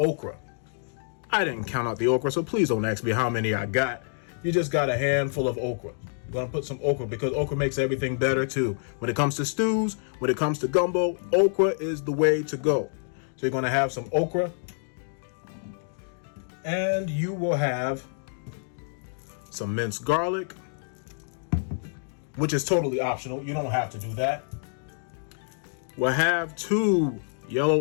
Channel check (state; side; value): silent; right; digital silence